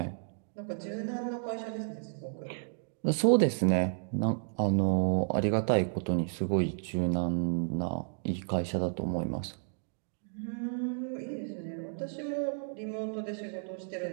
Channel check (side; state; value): left; silent; digital silence